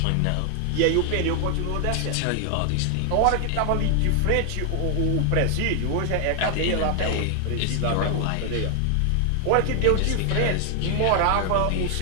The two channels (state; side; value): different; both; correlation 0.00